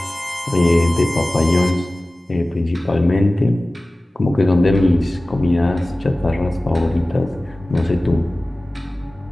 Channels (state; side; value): normal; both; correlation 0.97